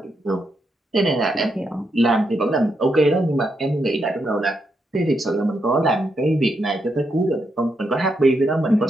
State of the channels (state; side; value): normal; both; correlation 0.81